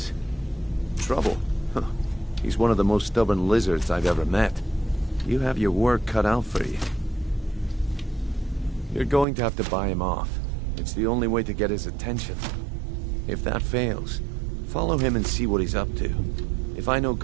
Trouble? Huh. He's one of the most stubborn lizards I've ever met. You have your work cut out for you. You're going to have to buy him off. It's the only way to get his attention. If that fails, follow him and see what he's up to. If I know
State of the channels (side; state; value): left; drops out; at 9.2 s